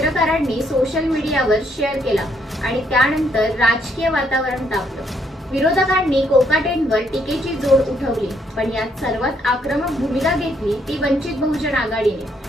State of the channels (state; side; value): normal; both; correlation 0.72